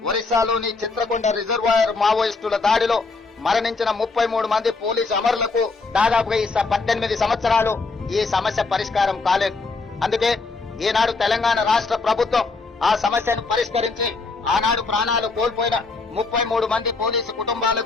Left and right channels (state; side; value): quieter; right; 3.9 dB